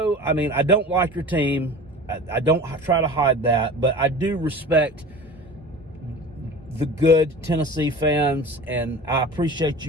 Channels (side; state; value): both; normal; correlation 0.38